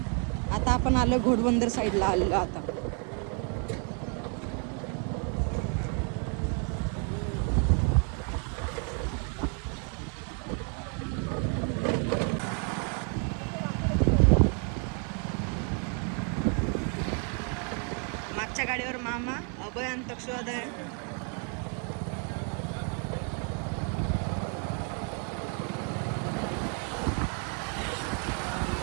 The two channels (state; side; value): quieter; left; 39.9 dB